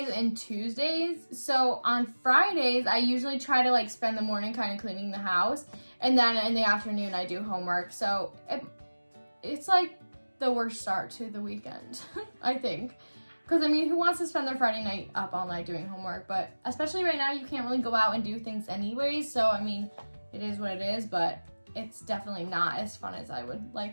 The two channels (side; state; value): both; inverted; correlation -1.00